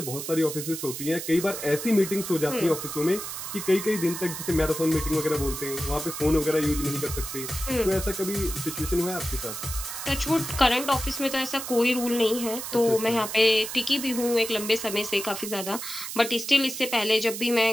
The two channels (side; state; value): right; noise; hiss, 7 dB below the sound